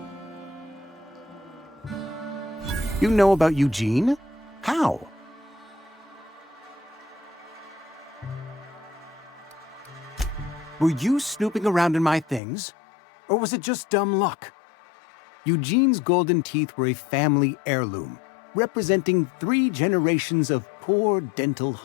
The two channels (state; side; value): drops out; right; at 12.4 s